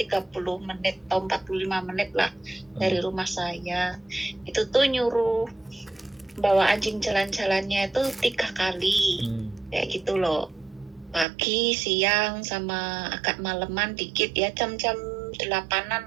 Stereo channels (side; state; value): left; drops out; at 11.2 s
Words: menit atau 45 menit lah dari rumah saya. Itu tuh nyuruh bawa anjing jalan-jalannya itu 3 kali kayak gitu loh, pagi, siang, sama agak maleman dikit ya, jam-jam 8-an